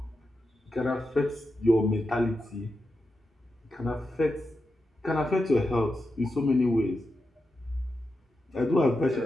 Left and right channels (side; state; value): both; normal; correlation 0.88